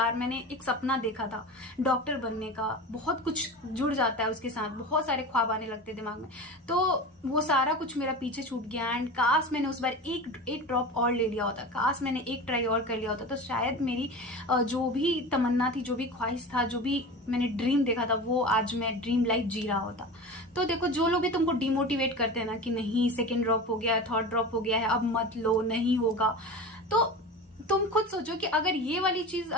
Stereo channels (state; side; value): normal; both; correlation 0.31